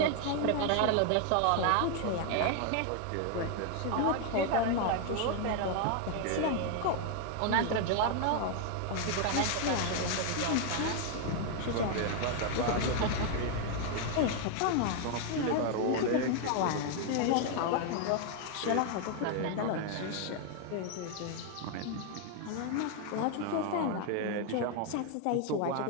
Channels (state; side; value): different; both; correlation 0.00